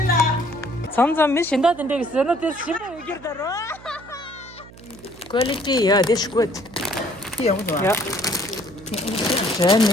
잠잠 미신다 된데 있어는 데 심어 얘기더라. 퀄리티 야 this good. 야. 저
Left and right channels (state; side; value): noise; right; hum, 20 dB below the sound